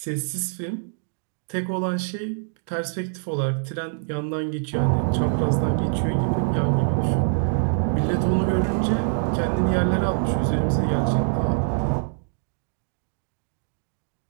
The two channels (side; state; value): left; silent; digital silence